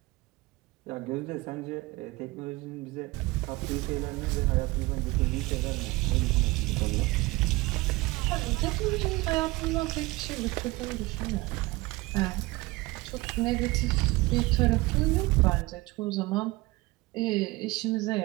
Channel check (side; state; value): left; quieter; 21.7 dB